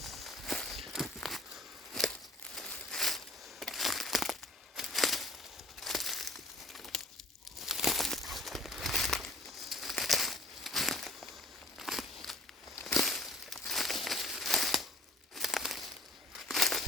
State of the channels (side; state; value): both; normal; correlation 0.51